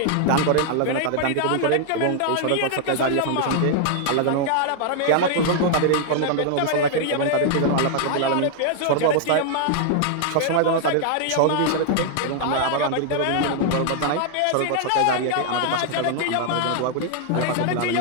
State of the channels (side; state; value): both; different; correlation 0.00